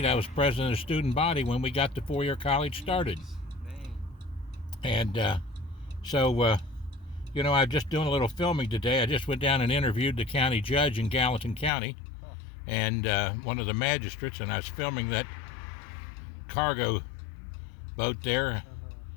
I was president of the student body when we got the four-year college started. Dang. And so, you know, I'm just doing a little filming today. I just went down and interviewed the county judge in Gallatin County and one of the magistrates, and I was filming that cargo boat there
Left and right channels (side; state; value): right; drops out; at 11.7 s